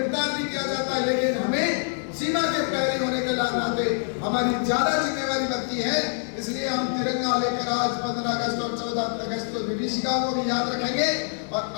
भी किया जाता है। लेकिन हमें सीमा के प्रहरी होने के नाते हमारी ज्यादा जिम्मेवारी बनती है। इसलिए हम तिरंगा लेकर आज 15 अगस्त और 14 अगस्त को विभीषिका को भी याद रखेंगे, और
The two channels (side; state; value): right; silent; 61 dB below the other